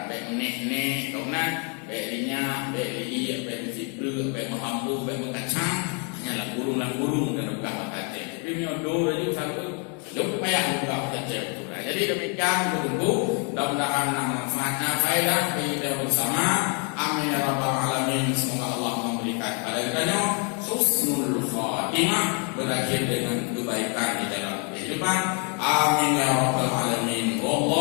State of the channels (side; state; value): right; quieter; 37.6 dB